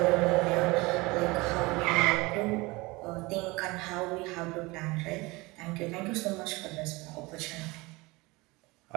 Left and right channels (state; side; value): quieter; left; 23.3 dB